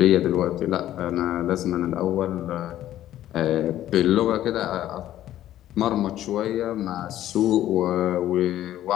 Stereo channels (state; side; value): quieter; right; 12.9 dB